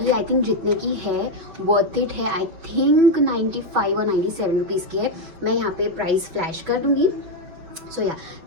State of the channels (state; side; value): late; left; 5.9 ms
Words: ये आई थिंक जितने की है वर्थ इट है। आई थिंक 95 और 97 रुपीज़ की है। मैं यहाँ पे प्राइस फ्लैश कर दूँगी। So yeah